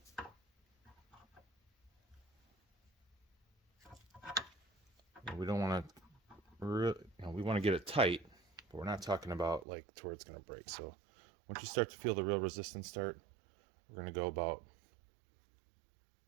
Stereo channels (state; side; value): drops out; left; at 9.7 s